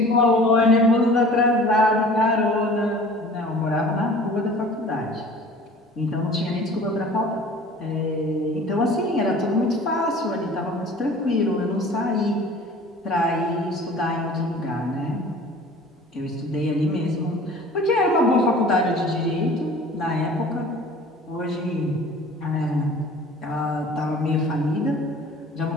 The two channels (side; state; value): both; normal; correlation 0.46